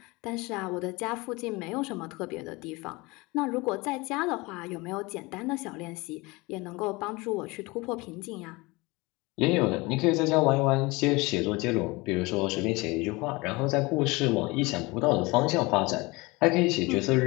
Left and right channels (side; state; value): right; quieter; 23.9 dB